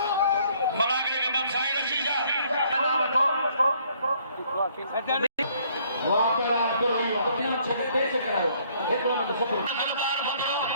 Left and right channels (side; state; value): both; inverted; correlation -0.63